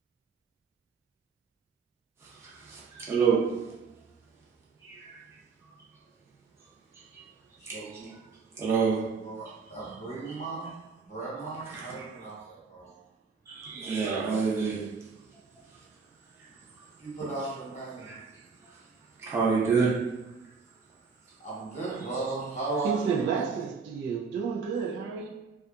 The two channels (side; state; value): left; quieter; 5.0 dB